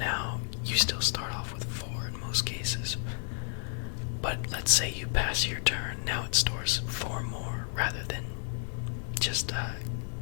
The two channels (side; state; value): right; silent; 57 dB below the other